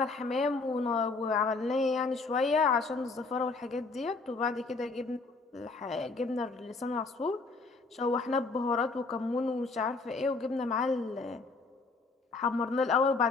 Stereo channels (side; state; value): right; quieter; 3.9 dB